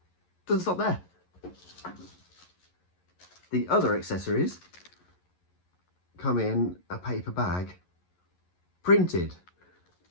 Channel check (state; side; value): late; right; 11 ms